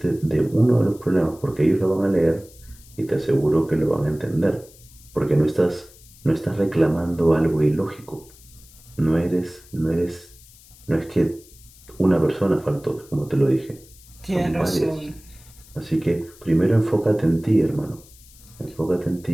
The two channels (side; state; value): left; noise; hiss, 24 dB below the sound